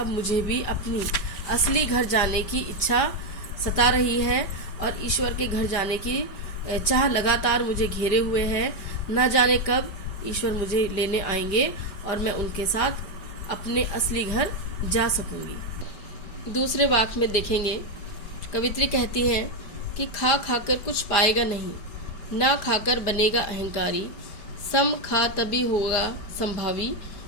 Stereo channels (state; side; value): late; right; 5.0 ms